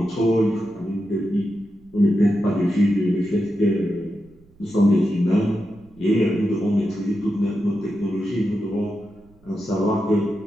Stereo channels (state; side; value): noise; right; rumble, 29 dB below the sound